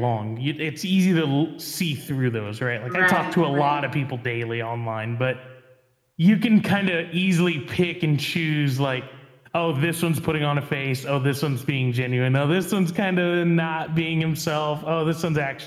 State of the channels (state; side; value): identical; both; correlation 1.00